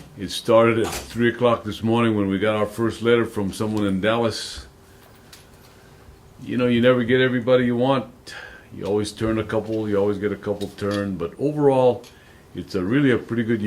It started at 3 o'clock this morning when we got our first letter from someone in Dallas. You know, you never get everybody you want. You always turn a couple, you always get a couple turned, but overall, it's really a pretty good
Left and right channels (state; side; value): identical; both; correlation 1.00